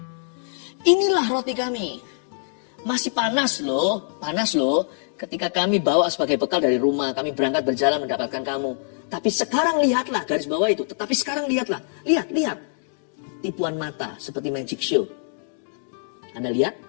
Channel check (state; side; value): silent; right; digital silence